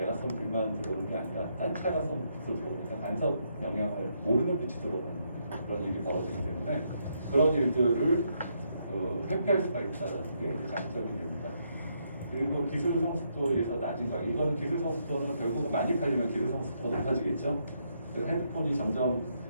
쏜 빛만 들어오는 게 아니라 다른 차가 쏜 빛도 들어오니까 간섭 영향을 모르는 빛이 들어오는 그런 일이 벌어지기 때문에 그런 일들을 회피할 수가 있다는 게 장점이 됩니다. 그리고 기술 성숙도에서 낮은 가격. 이거는 기술 성숙도는 결국 많이 팔리면 기술 성숙도가 높아지겠죠. 그래서 핸드폰이 점점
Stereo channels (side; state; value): both; inverted; correlation -0.76